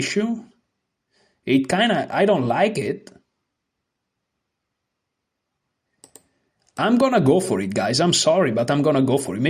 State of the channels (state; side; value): identical; both; correlation 1.00